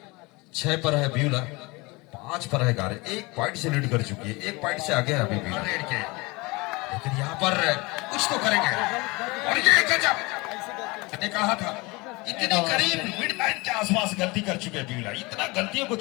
6 पर है ब्यूला, 5 पर है गारे। 1 पॉइंट से लीड कर चुकी है, 1 पॉइंट से आगे है अभी ब्यूला के, लेकिन यहाँ पर कुछ तो करेंगे। और ये गजब, मैंने कहा था इतनी करीब मिड लाइन के आसपास गलती कर चुके हैं ब्यूला। इतना गलतियों को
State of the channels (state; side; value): quieter; right; 24.8 dB